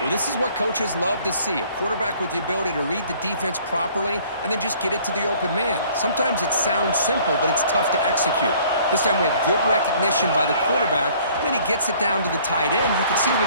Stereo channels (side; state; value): both; inverted; correlation -0.56